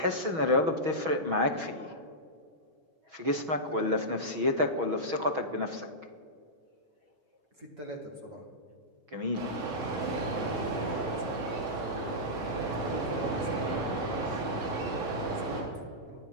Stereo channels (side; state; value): left; late; 6.2 ms